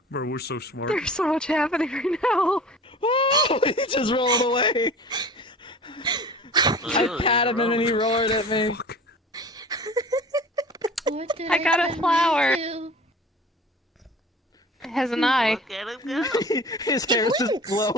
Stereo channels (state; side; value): normal; both; correlation 0.41